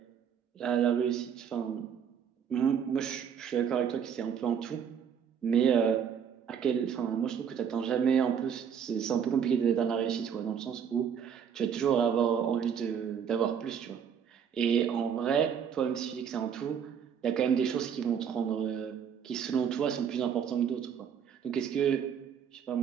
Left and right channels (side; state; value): left; quieter; 7.8 dB